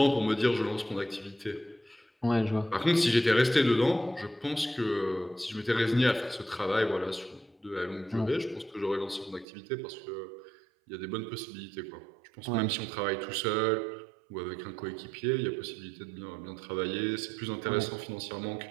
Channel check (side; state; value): left; drops out; at 9.5 s